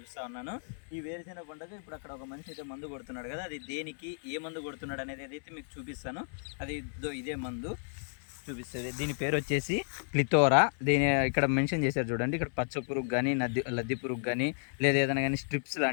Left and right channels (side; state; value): right; silent; digital silence